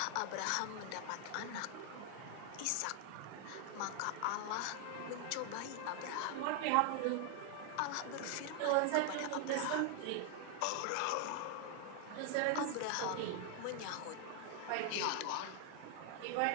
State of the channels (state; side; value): different; both; correlation 0.00